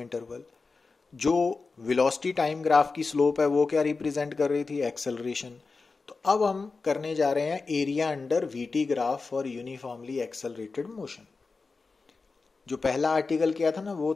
जो वेलोसिटी टाइम ग्राफ की स्लोप है वो क्या रिप्रेजेंट कर रही थी, एक्सेलरेशन। तो अब हम करने जा रहे हैं area under VT graph for uniformly accelerated motion. जो पहला आर्टिकल किया था ना वो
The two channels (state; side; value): quieter; right; 4.2 dB